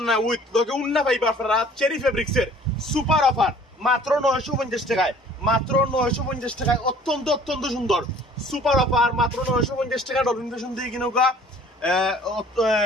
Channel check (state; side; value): normal; both; correlation 0.52